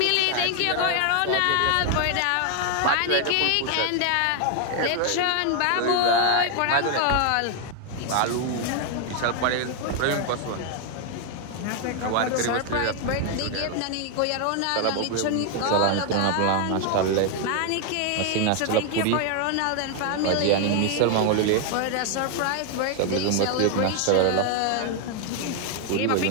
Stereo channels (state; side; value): different; both; correlation 0.00